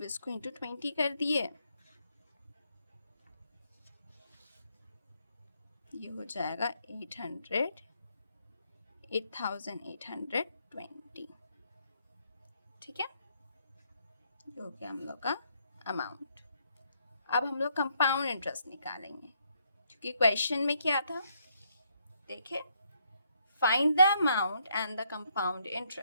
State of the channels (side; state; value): both; inverted; correlation -0.73